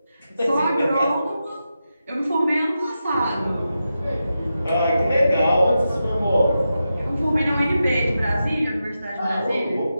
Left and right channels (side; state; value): both; inverted; correlation -0.89